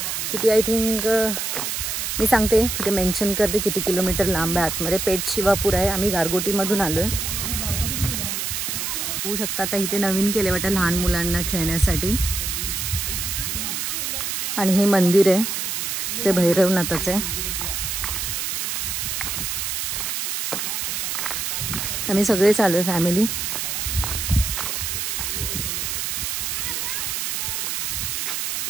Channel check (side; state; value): right; noise; hiss, 2 dB below the sound